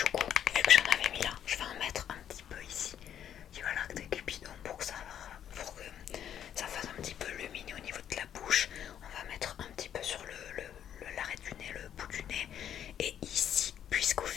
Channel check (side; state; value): right; quieter; 9.7 dB